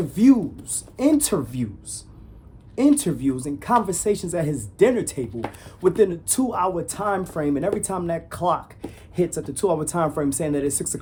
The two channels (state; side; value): identical; both; correlation 1.00